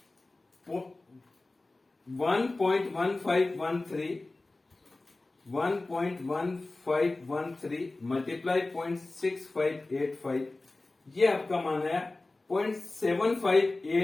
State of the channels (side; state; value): right; quieter; 3.1 dB